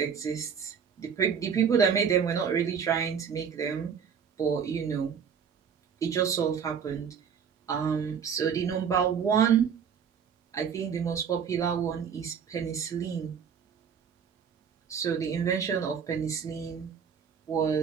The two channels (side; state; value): left; quieter; 7.1 dB